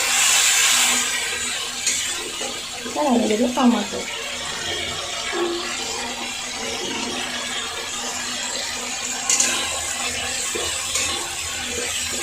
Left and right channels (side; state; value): left; noise; rumble, 22 dB below the sound